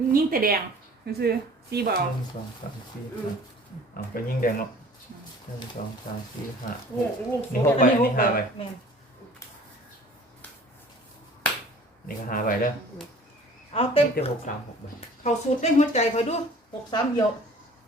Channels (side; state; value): both; normal; correlation 0.48